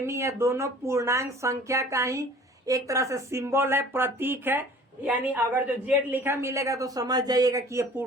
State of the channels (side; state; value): both; normal; correlation 0.48